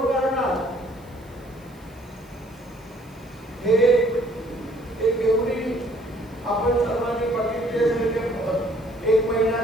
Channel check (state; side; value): noise; right; hiss, 29 dB below the sound